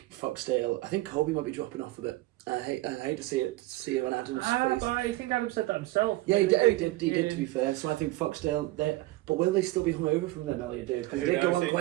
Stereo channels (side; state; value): left; quieter; 18.7 dB